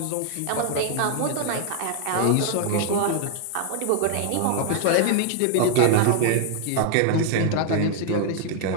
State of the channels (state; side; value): different; both; correlation 0.00